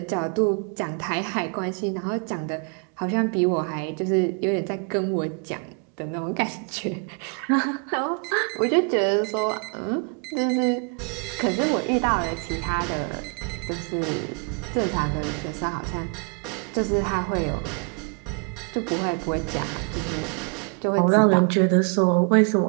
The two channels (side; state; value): left; quieter; 38.4 dB